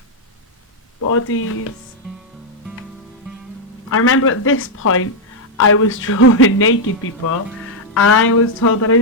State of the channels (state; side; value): normal; both; correlation -0.01